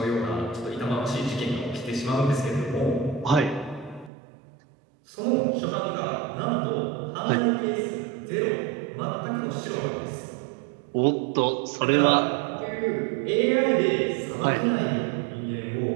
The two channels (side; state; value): left; drops out; at 4.1 s